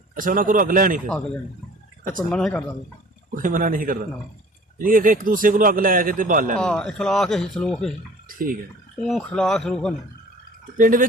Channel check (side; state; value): both; normal; correlation 0.48